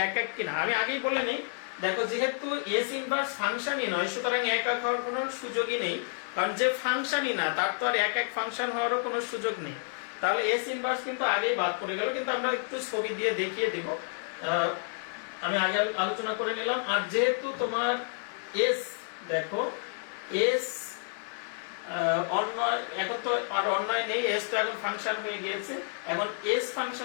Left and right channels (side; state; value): right; silent; 55 dB below the other